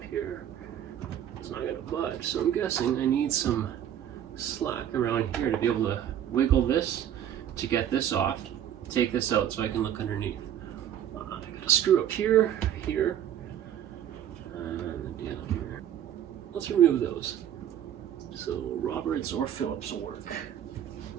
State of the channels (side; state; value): left; quieter; 10.3 dB